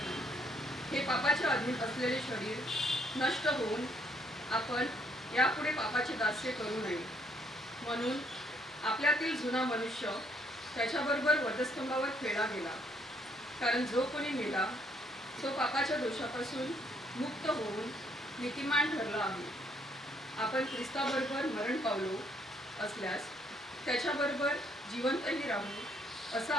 हे पापाच्या अधीन असलेले शरीर नष्ट होऊन आपण यापुढे पापाचे दास्य करू नये. म्हणून आपल्यातील जुना मनुष्य त्याच्याबरोबर वधस्तंभावर खेळला गेला. कारण जो कोणी मेला तो पापाच्या दोषापासून मुक्त होऊन नीतिमान ठरला आहे. आपण ख्रिस्ताबरोबर मरण पावलो असल्यास त्याच्याबरोबर जिवंतही राहू असा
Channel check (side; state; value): both; normal; correlation 0.68